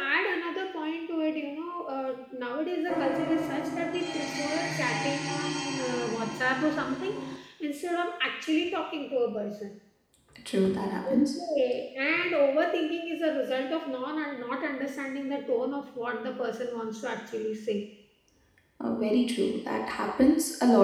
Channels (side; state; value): both; identical; correlation 1.00